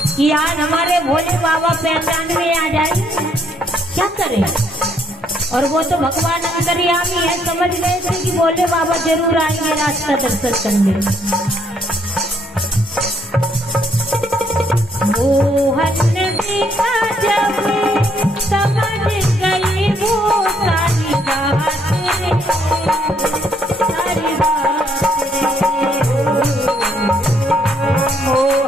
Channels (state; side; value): normal; both; correlation 0.70